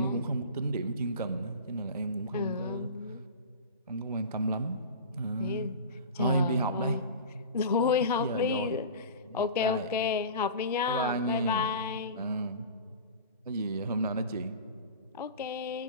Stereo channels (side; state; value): both; inverted; correlation -0.34